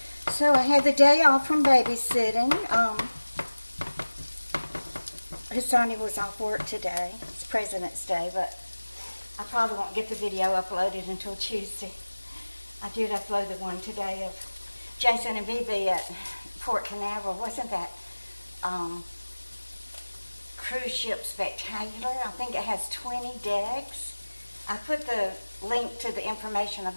So I had the day off from babysitting. Sonny was off work today. It's President's Day, but I probably won't get the video uploaded until Tuesday. I did upload the one today of Jason and Bibi at Port Canaveral. Wasn't that cruise ship spectacular? I think it has 20 decks. I put the link to the information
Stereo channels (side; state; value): both; inverted; correlation -1.00